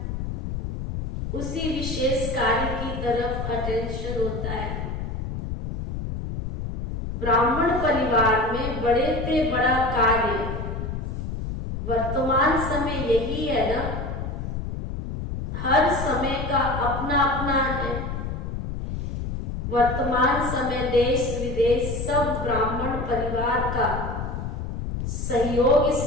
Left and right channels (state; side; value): noise; left; rumble, 4 dB below the sound